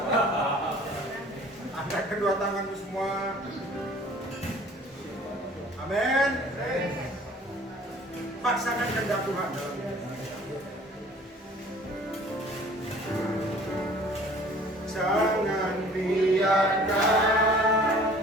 Angkat kedua tanganmu semua. Amin. Paksakan kehendak Tuhan. Jangan biarkan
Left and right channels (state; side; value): normal; both; correlation 0.50